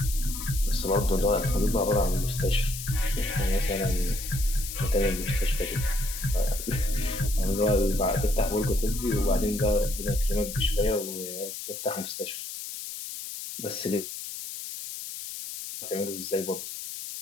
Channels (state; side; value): noise; left; hiss, 8 dB below the sound